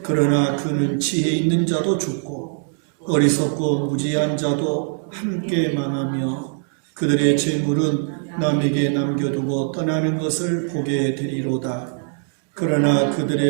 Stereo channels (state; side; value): silent; left; digital silence